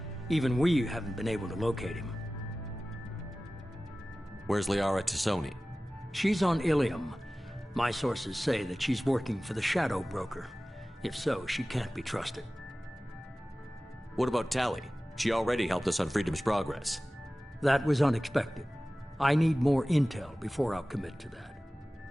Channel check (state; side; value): normal; both; correlation 0.97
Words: Even we haven't been able to locate him. Where's Liara T'Soni? She's on Ilium. My sources say that she's working for the Shadow Broker. If so, she can't be trusted. What about Tali? She already helped us on Freedom's Progress. That was unexpected. I need more intel before I'll commit to that.